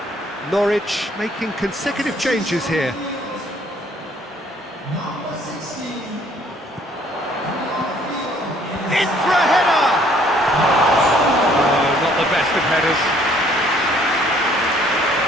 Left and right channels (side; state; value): both; normal; correlation 0.61